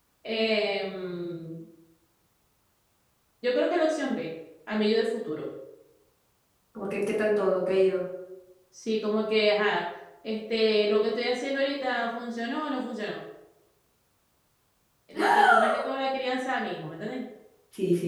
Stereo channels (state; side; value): identical; both; correlation 1.00